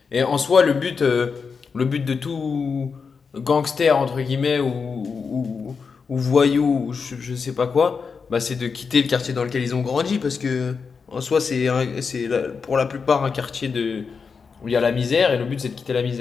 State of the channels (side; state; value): right; quieter; 5.4 dB